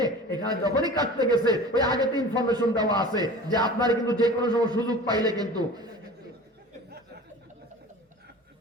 এখানে যখনই কাটতে গেছে, ওই আগে তো ইনফরমেশন দেওয়া আছে যে আপনার কিন্তু যে কোনো সময় সুযোগ পাইলে কিন্তু।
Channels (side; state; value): both; normal; correlation 0.39